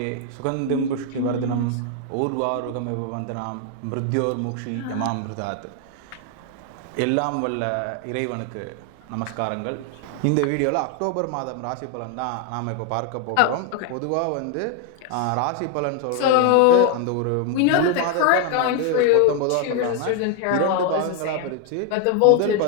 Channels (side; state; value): both; different; correlation 0.01